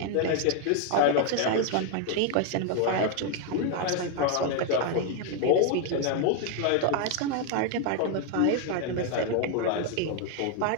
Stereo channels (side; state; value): both; different; correlation 0.01